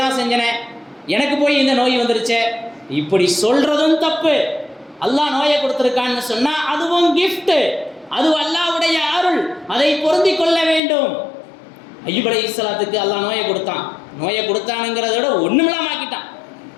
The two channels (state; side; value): drops out; right; at 10.8 s